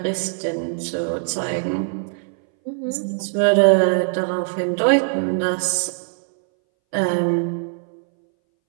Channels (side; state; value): left; silent; 62 dB below the other